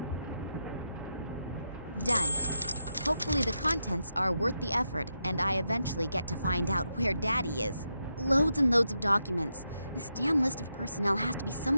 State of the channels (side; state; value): both; inverted; correlation -0.85